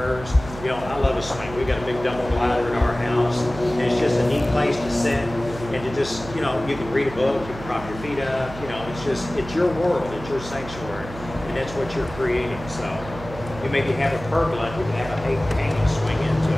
You know, I love a swing. We got a big double glider in our house. And it's just a neat place to sit and to just, you know, you can read a book, you can prop your feet up, you know, it's your world, it's your sanctuary, and that's what you're creating. So you maybe have a pergola, you can have a hanging swing into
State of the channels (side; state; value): right; noise; hum, 13 dB below the sound